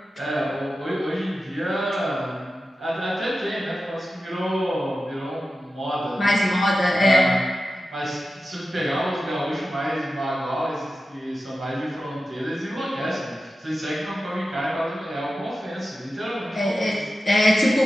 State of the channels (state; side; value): normal; both; correlation 0.93